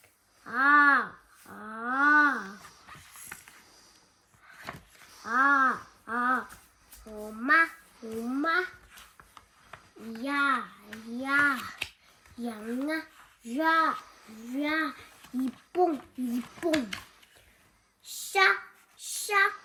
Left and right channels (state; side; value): identical; both; correlation 1.00